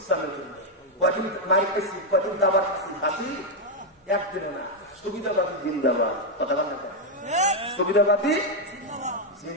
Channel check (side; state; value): both; normal; correlation 0.01